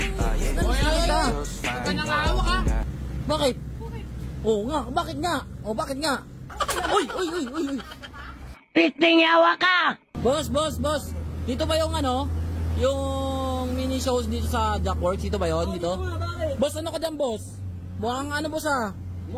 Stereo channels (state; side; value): identical; both; correlation 1.00